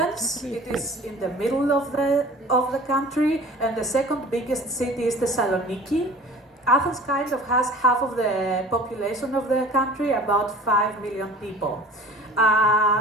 It is in the middle of the country, and the second biggest city is Thessaloniki. Athens kind of has half of the population of the country, about 5 million people.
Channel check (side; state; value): both; normal; correlation 0.44